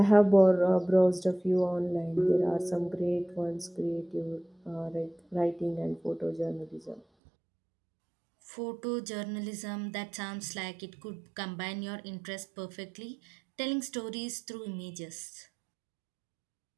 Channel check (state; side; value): drops out; left; at 7.0 s